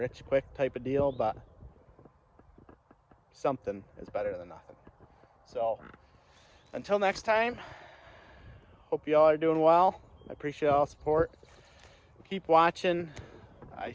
quick type of deal, but something is better than nothing. So until next time, hope you all are doing well. I appreciate all the support. Keep watching.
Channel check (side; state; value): both; identical; correlation 1.00